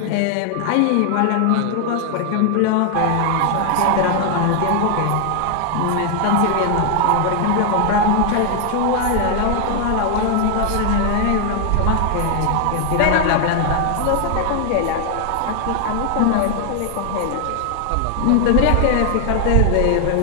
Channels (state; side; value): different; both; correlation 0.00